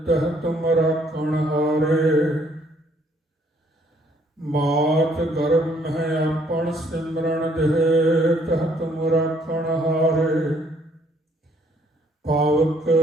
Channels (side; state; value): both; normal; correlation 0.65